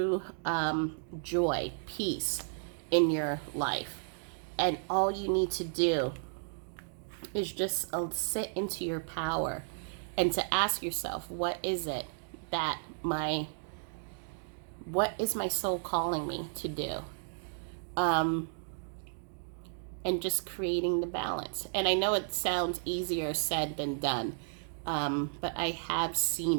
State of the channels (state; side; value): silent; left; digital silence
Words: joy, peace in your life. And all you need to do is just sit into your power and to ask yourself, what is my soul calling me to do? And just creating the balance. And I know it sounds easier said than done, but I have